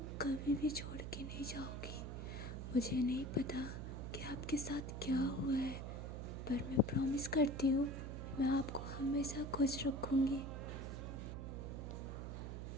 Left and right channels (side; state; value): right; noise; hum, 6 dB below the sound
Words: कभी भी छोड़ के नहीं जाओगी। मुझे नहीं पता कि आपके साथ क्या हुआ है, पर मैं प्रॉमिस करती हूँ मैं आपको हमेशा खुश रखूँगी।